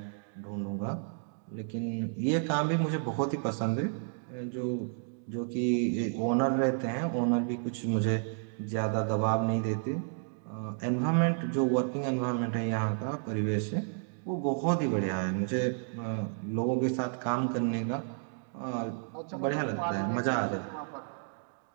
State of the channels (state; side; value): silent; left; digital silence